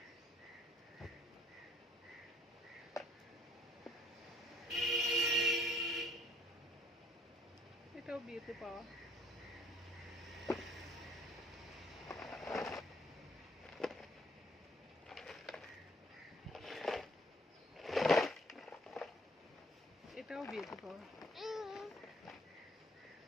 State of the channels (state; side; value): normal; both; correlation 0.62